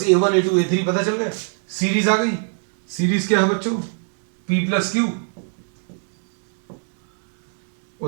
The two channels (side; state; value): left; silent; 63 dB below the other